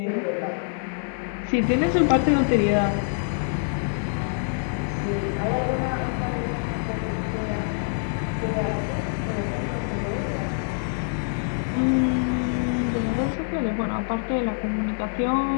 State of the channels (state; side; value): silent; right; digital silence